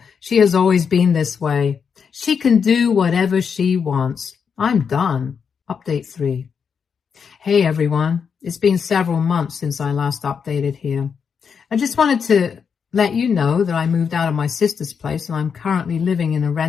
she has always been this way. She can do whatever she wants. I'm done. Update 3. Hey everyone, it's been several months since I last updated here. I just wanted to let you know that I moved out of my sister's place and I'm currently living in a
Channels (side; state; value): right; quieter; 6.5 dB